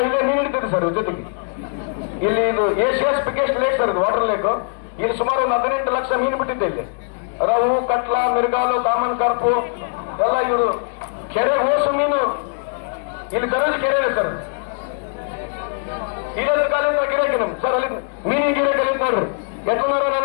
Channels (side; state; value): right; silent; 63 dB below the other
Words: ಇಲ್ಲೇ ನೀರು ಹಿಡಿತೀವಿ ಸರ್. ಜೊತೆಗೆ ಇಲ್ಲಿ ಇದು ಏಷಿಯಾಸ್ ಬಿಗ್ಗೆಸ್ಟ್ ಲೇಕ್ ಸರ್, ಇದು ವಾಟರ್ ಲೇಕ್. ಇಲ್ಲಿ ಸುಮಾರು ಒಂದು 18 ಲಕ್ಷ ಮೀನು ಬಿಟ್ಟಿದ್ದೆ. ಇಲ್ಲಿ ರವು, ಕಟ್ಲ, ಮಿರ್ಗಾಲು, ಕಾಮನ್ ಕಾರ್ಪು ಎಲ್ಲ ಇವರು ಕೆರೆ ಓಸು ಮೀನು ಇಲ್ಲಿ ದರಜ್ ಕೆರೆ ಇದೆ ಸರ್. ಇಲ್ಲದ ಕಾಲಿಂದ ಗಿರಾಕಿ ನಮ್ ಸರ್, ಅಲ್ಲಿ ಮೀನಿನ ಗಿರಾಕಿ ಅಲ್ಲಿ ನೋಡ್ರಿ ಎಟ್ಟನಾರ